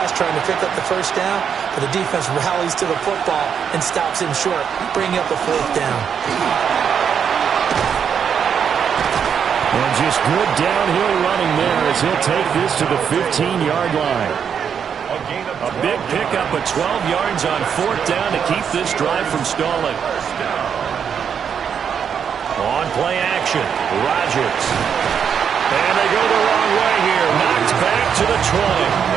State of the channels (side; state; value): left; quieter; 7.5 dB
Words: trying to pick up the first down, but the defense rallies to the football and stops him short, bringing up a 4th down. And just good downhill running there as he'll take this to the 15-yard line. A big pickup of 12 yards on 4th down to keep this drive from stalling. On play action, Rodgers. And they go the wrong way here. Knocked back to the 20.